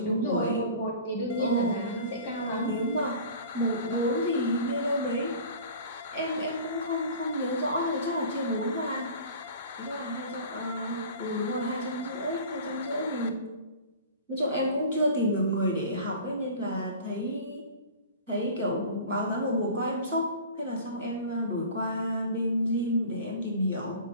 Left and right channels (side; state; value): both; inverted; correlation -0.41